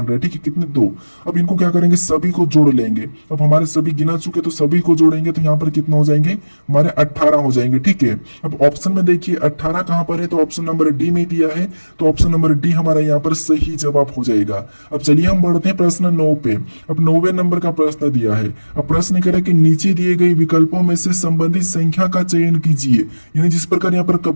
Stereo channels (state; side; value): inverted; both; correlation -1.00